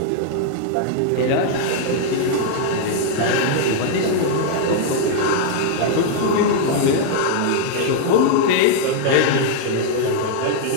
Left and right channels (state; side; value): different; both; correlation -0.01